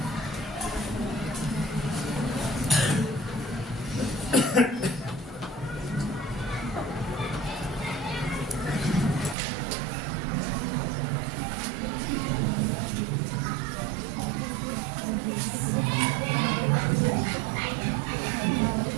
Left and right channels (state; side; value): drops out; left; at 9.3 s